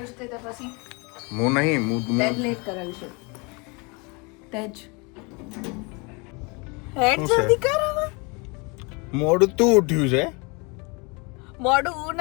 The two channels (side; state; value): right; quieter; 29.8 dB